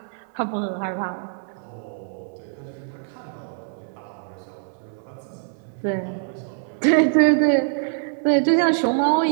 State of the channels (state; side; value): silent; left; 63 dB below the other